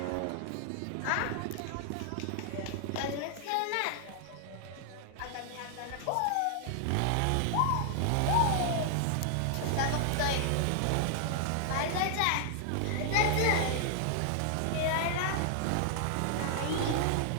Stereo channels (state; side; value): different; both; correlation 0.00